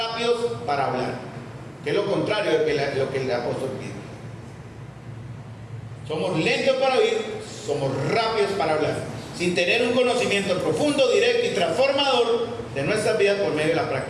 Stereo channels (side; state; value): both; identical; correlation 1.00